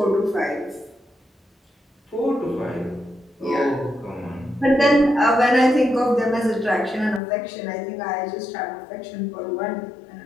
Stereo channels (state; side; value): drops out; right; at 7.2 s